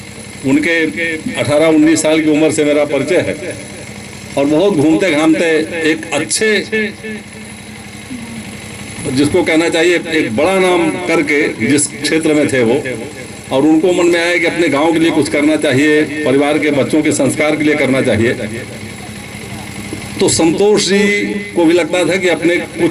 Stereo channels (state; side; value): identical; both; correlation 1.00